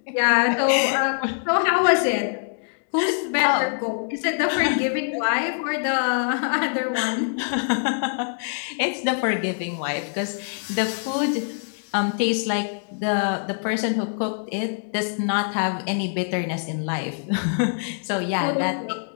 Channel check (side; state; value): right; silent; digital silence